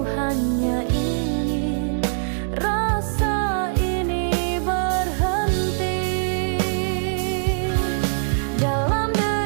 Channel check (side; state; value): left; silent; digital silence